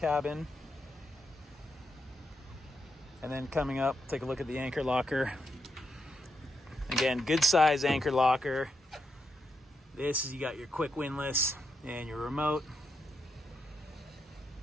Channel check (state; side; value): normal; both; correlation 0.82